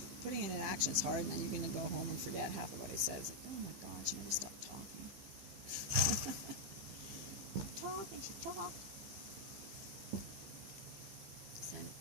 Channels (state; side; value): late; left; 15 ms